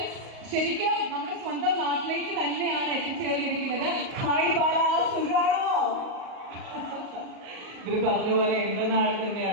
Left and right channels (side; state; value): left; late; 38 ms